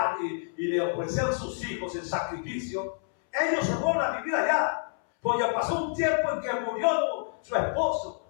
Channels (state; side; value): silent; right; 59 dB below the other